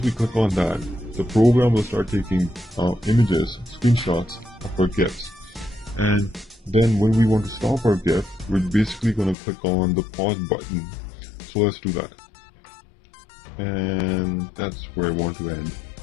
we click on that, the program will start taking images, screenshots of our GIFs. And then when we want to stop our GIF, we're basically going to click on the pause button. So let's do that. And that's where I want to end.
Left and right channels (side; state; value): right; drops out; at 9.3 s